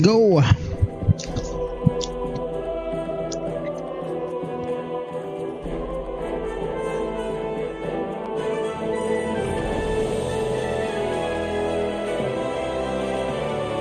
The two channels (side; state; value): both; identical; correlation 1.00